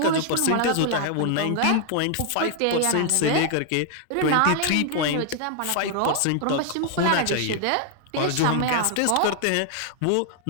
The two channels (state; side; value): different; both; correlation 0.00